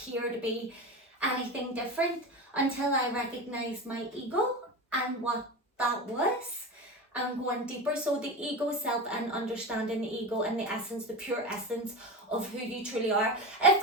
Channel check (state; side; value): normal; both; correlation 0.24